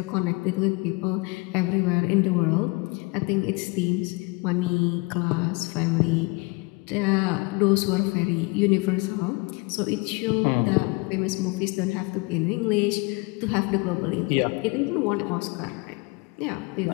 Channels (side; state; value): right; quieter; 27.7 dB